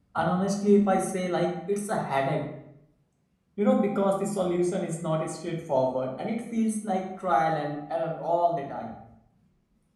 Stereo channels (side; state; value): both; identical; correlation 1.00